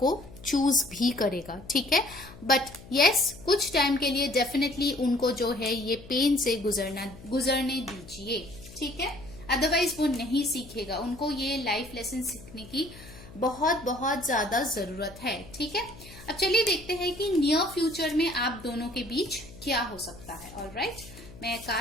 चूज भी करेगा, ठीक है। बट यस, कुछ टाइम के लिए डेफिनेटली उनको जो है ये पेन से गुजरने दीजिए, ठीक है। अदरवाइज वो नहीं सीखेगा, उनको ये लाइफ लेसन सीखने की बहुत बहुत ज्यादा जरूरत है, ठीक है। अब चलिए देखते हैं कि नियर फ्यूचर में आप दोनों के बीच क्या हो सकता है। ऑलराइट, मैं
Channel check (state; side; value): noise; left; hum, 18 dB below the sound